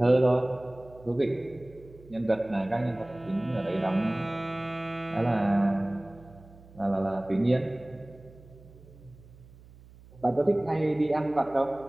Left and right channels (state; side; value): noise; right; hum, 22 dB below the sound